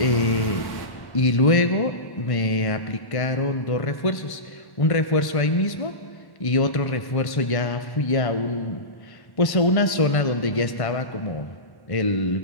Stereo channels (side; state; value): right; late; 1.1 ms